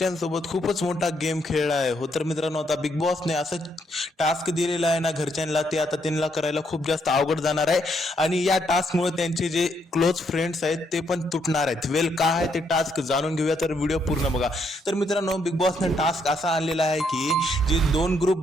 खूपच मोठा गेम खेळला आहे. हो तर मित्रांनो, आता बिग बॉसने असं टास्क दिलेला आहे ना घरच्यांना, ते आता त्यांना करायला खूप जास्त अवघड जाणार आहे. आणि या टास्कमुळे त्यांचे जे क्लोज फ्रेंड्स आहेत ते पण तुटणार आहेत. वेल काय आहे ते टास्क जाणून घेऊया, तर व्हिडिओ पूर्ण बघा. तर मित्रांनो, बिग बॉसने टास्क असा आणलेला आहे की जे 2 ग्रुप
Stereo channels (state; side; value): normal; both; correlation 0.74